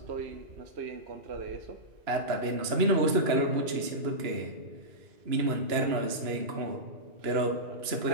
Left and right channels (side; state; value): left; late; 2.9 ms